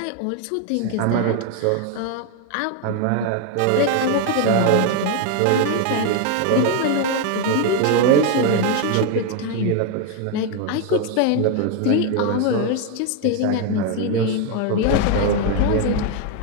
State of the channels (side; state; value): both; different; correlation 0.01